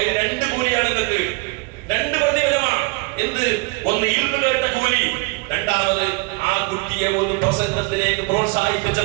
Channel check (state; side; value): quieter; left; 26.4 dB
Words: 2 കൂലിയാണ് നിങ്ങൾക്ക്, 2 പ്രതിഫലമാണ്. എന്ത്? ഒന്ന് ഇൽമു കേട്ട കൂലി, രണ്ടാമത് ആ കുട്ടിയെ ഒരു പ്രസംഗത്തിലേക്ക് പ്രോത്സാഹിപ്പിച്ച